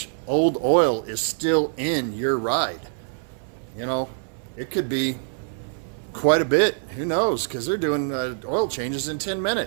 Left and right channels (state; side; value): silent; left; 62 dB below the other